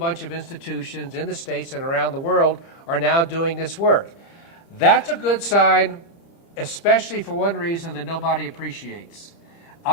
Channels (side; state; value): right; late; 30 ms